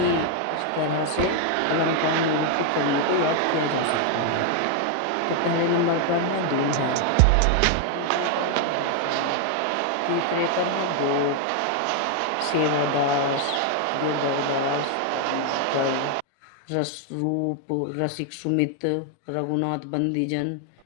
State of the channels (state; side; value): different; both; correlation 0.00